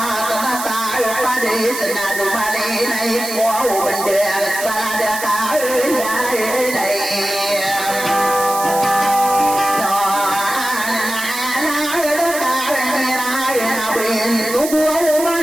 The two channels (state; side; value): noise; right; hiss, 7 dB below the sound